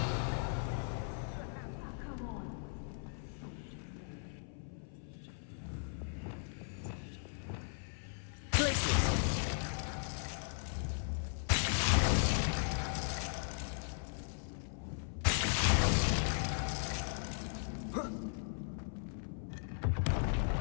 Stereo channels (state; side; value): silent; right; 53 dB below the other